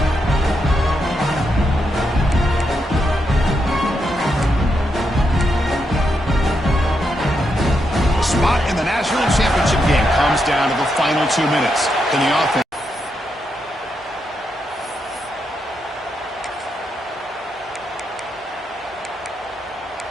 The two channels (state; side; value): normal; both; correlation 0.82